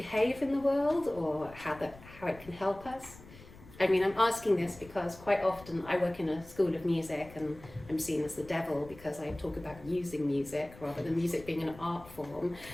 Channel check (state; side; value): noise; left; rumble, 20 dB below the sound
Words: in the world, or how it can help us? I mean, I'm asking this because quite often I work in a school of music and I'm seen as the devil because I talk about using music rather than music being an art form,